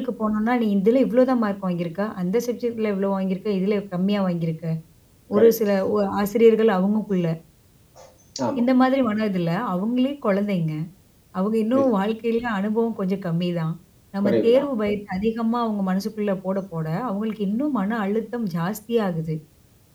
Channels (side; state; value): both; identical; correlation 1.00